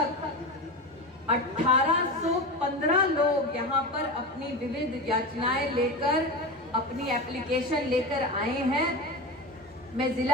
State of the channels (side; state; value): both; normal; correlation 0.23